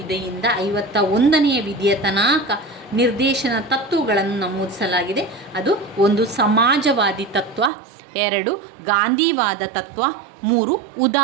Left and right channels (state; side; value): drops out; left; at 7.7 s